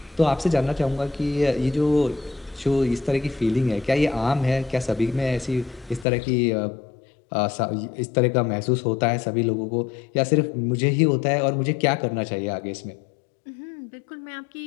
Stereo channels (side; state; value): right; drops out; at 6.1 s